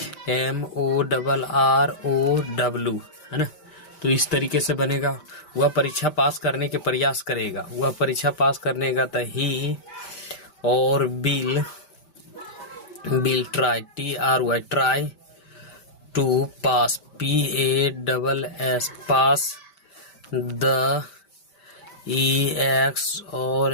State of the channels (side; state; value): right; late; 5.1 ms